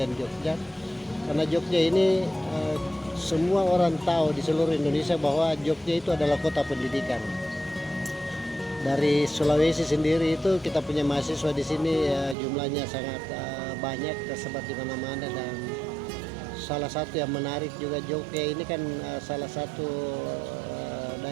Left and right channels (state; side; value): drops out; left; at 12.4 s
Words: Jogja. Karena Jogja ini semua orang tahu di seluruh Indonesia bahwa Jogja itu adalah kota pendidikan. Dari Sulawesi sendiri itu kita punya mahasiswa di sini jumlahnya sangat banyak, tersebar di mana-mana, dan salah satu yang menarik juga Jogja ini kan salah satu